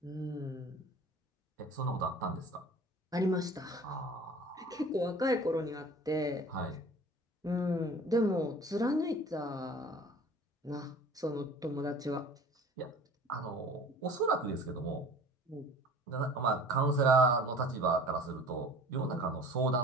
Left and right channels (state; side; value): normal; both; correlation 0.44